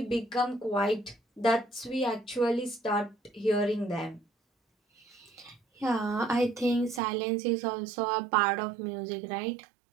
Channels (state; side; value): drops out; left; at 7.0 s